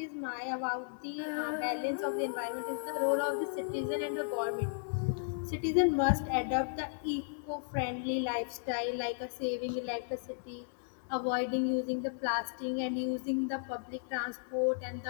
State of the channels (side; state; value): right; silent; digital silence